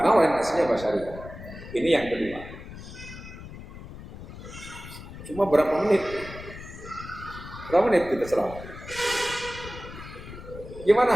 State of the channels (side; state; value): left; noise; rumble, 13 dB below the sound